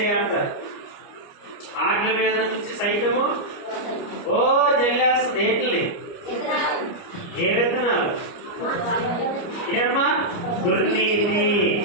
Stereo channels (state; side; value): late; right; 29 ms